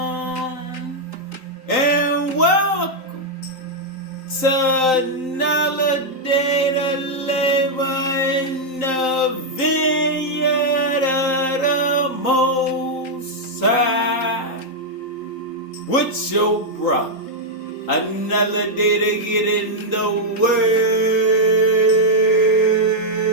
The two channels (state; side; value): late; right; 3.9 ms